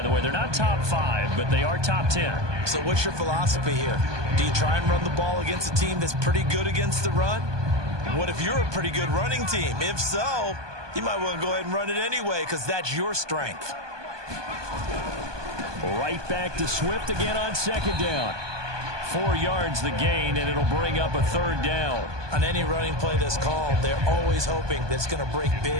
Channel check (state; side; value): late; left; 1.2 ms